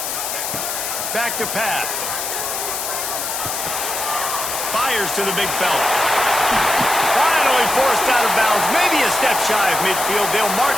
Back to pass. Fires to the big fella. Finally forced out of bounds. Maybe a step shy of midfield. They'll mark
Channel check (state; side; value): noise; left; hiss, 3 dB below the sound